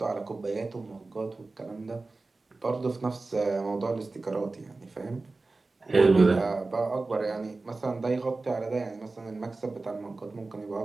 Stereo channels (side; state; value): left; quieter; 3.5 dB